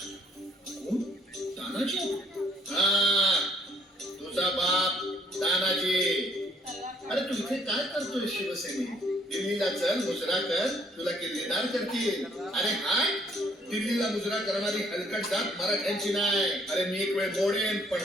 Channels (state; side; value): normal; both; correlation 0.65